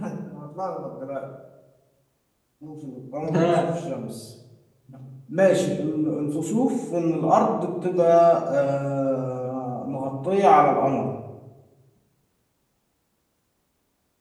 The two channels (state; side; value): identical; both; correlation 1.00